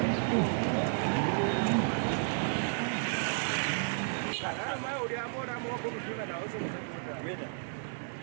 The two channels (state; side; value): silent; left; 56 dB below the other